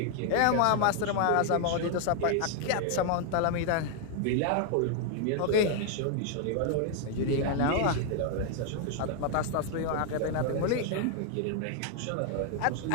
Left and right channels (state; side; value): different; both; correlation 0.00